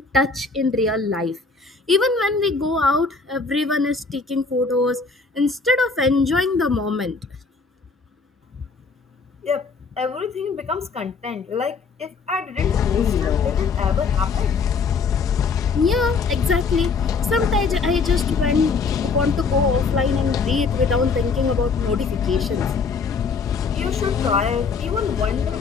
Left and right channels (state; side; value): quieter; right; 4.6 dB